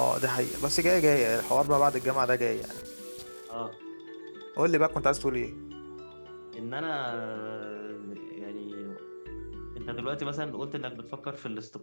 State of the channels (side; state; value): both; inverted; correlation -1.00